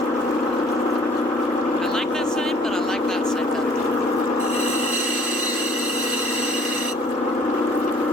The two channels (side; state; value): both; normal; correlation 0.56